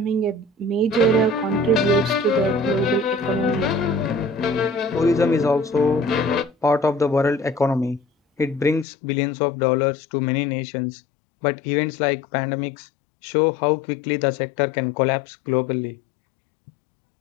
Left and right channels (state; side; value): drops out; right; at 8.8 s